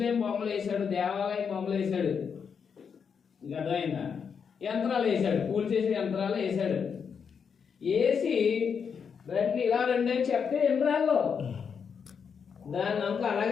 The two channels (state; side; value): quieter; right; 6.6 dB